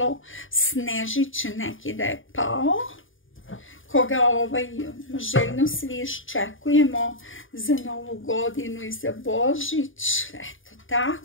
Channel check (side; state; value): right; late; 0.58 ms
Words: snežić neki da je pao, koga željno svi iščekujemo za Novu godinu i za Božić. Eto